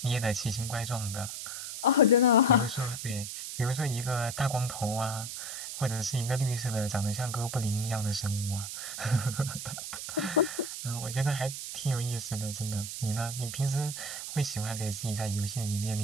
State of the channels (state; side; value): noise; right; hiss, 7 dB below the sound